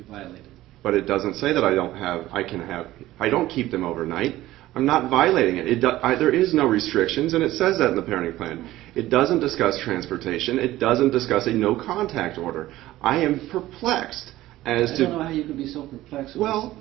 violated. But it doesn't say that I don't keep them overnight. I'm not violating it. There is no restrictions, and it says that in the parenting plan. It doesn't discuss transportation. It doesn't discuss a no contact order. I am perplexed as to... I don't know how you could be so perplexed. Well...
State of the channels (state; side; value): quieter; left; 15.8 dB